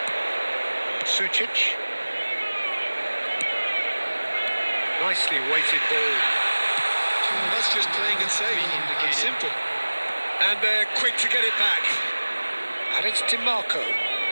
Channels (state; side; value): inverted; both; correlation -1.00